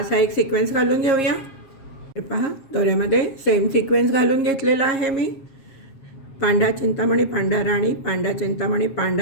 एक सिक्वेन्स घालून घेऊया. हे पहा, दोऱ्यामध्ये सेम सिक्वेन्स घालून घेतलेला आहे मी. पांढरा चिंतामणी, पांढरा राणी, पांढरा चिंतामणी,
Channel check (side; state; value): right; late; 7.4 ms